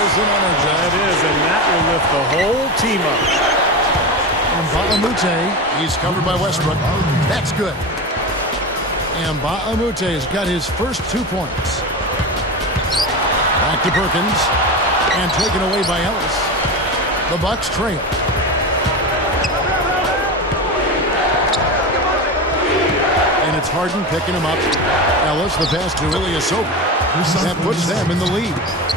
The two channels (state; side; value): normal; both; correlation 0.23